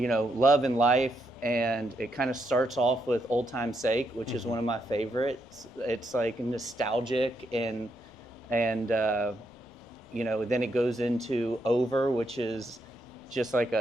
and life, and it kind of starts off with Old Time's Sake, which is one of my favorites. It's like nostalgic and then it goes into Over, which is just like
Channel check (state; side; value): normal; both; correlation 0.79